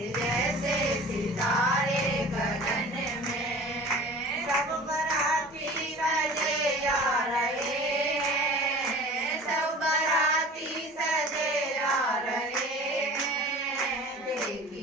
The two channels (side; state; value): both; normal; correlation 0.42